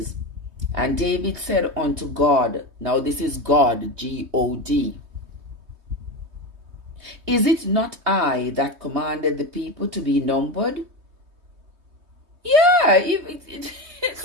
And David said unto God, now this is God, G-O-D, Is it not I that commanded the people to be numbered? Yeah,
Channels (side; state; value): left; late; 3.2 ms